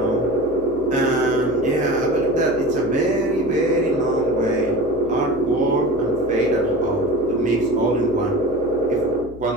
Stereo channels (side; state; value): left; noise; hum, 17 dB below the sound